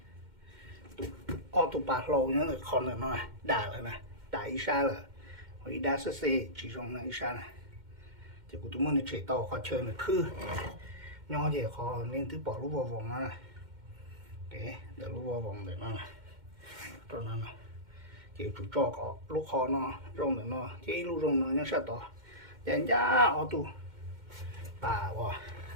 ô tô bạc lâu nhớ là con là nó đà rồi nè đà ít xa rồi hồi đa sơ xe chỉ dùng là ít xa này thì của tụi mình chạy tàu khó chơi là khư nhỏ thì khó nên thứ bỏ lúc vào vòng nó này để lúc vào vòng để nó này cho nó này chỉ chủ cho có lúc khó nó rong để nó chỉ lúc rong nó nhớ sao to dành ra ô tô bà quá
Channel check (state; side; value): late; left; 2.1 ms